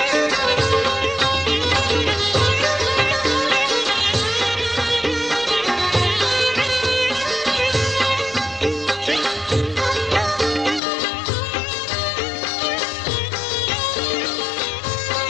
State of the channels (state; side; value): drops out; right; at 10.8 s